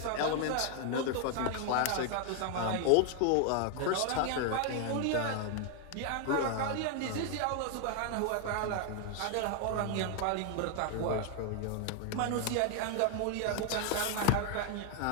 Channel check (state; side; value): different; both; correlation 0.00